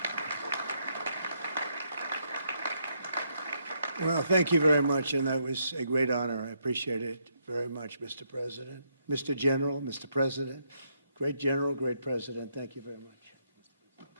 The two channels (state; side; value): inverted; both; correlation -0.76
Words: Well, thank you very much, and that was a great honor. I appreciate it very much, Mr. President. Mr. General, Mr. President, great General, great President, thank you very much.